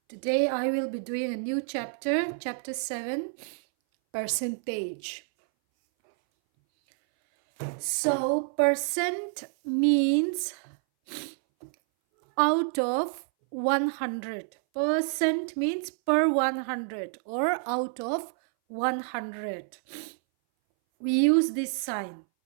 Today I will be doing a new chapter, chapter 7, percentage. So percent means out of 100. Percent means per 100 or out of 100. We use this sign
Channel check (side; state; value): left; silent; 59 dB below the other